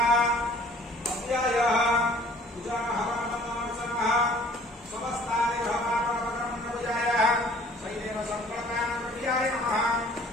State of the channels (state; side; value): normal; both; correlation 0.53